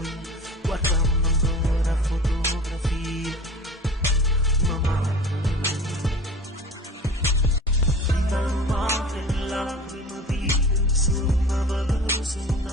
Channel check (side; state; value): both; normal; correlation 0.40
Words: guardando ancora fotografie, mamma, vita madre, lacrime vive, suona veloce,